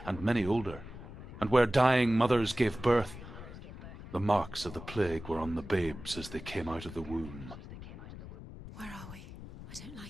and many older, and where dying mothers gave birth, the marks of the plague were on the babes as they came out of the womb. Where are we? I don't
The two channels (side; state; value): left; noise; rumble, 13 dB below the sound